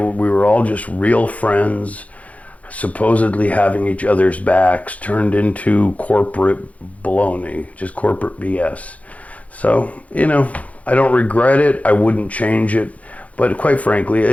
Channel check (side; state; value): right; late; 0.068 ms